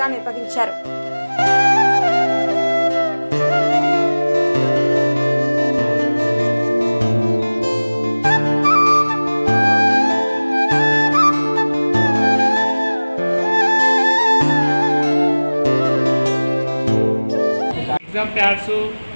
నిర్వహించారు. ఎగ్జామ్ ప్యాడ్స్,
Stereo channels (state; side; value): inverted; both; correlation -1.00